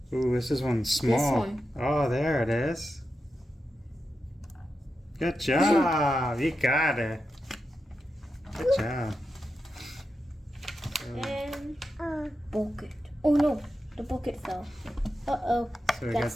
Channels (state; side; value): normal; both; correlation 0.89